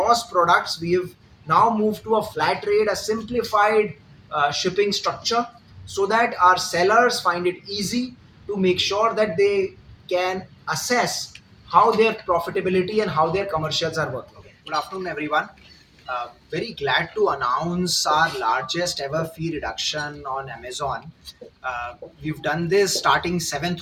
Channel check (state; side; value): identical; both; correlation 1.00